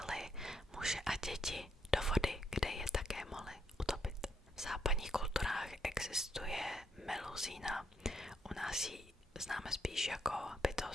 muže a děti do vody, kde je také mohli utopit. V západních kulturách existuje Meluzína. U nás ji známe spíš jako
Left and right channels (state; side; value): normal; both; correlation 0.76